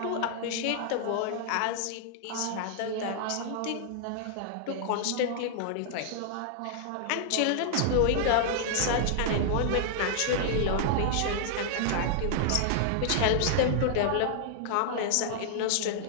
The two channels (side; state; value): both; different; correlation -0.01